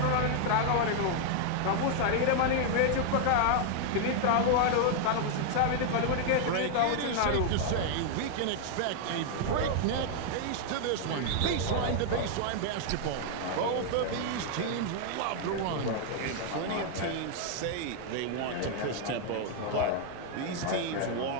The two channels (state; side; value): different; both; correlation 0.00